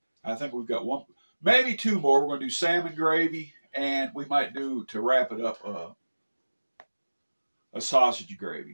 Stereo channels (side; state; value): both; inverted; correlation -1.00